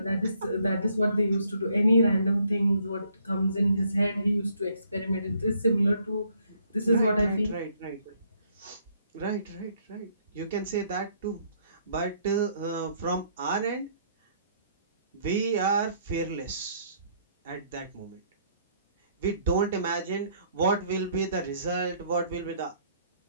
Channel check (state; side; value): inverted; both; correlation -0.66